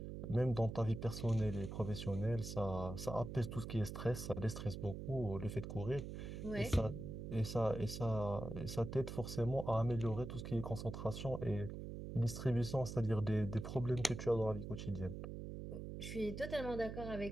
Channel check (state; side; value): noise; right; hum, 7 dB below the sound